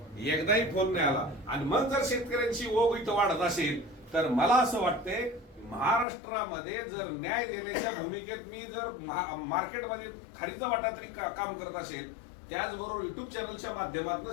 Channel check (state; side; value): drops out; right; at 6.1 s